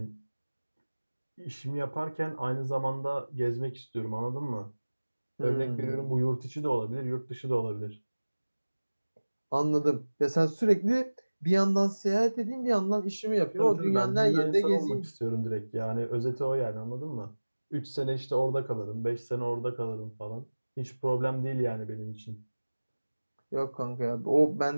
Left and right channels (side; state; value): both; inverted; correlation -1.00